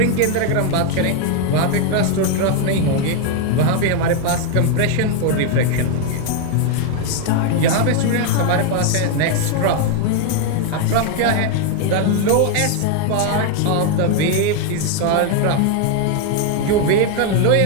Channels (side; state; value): both; different; correlation 0.01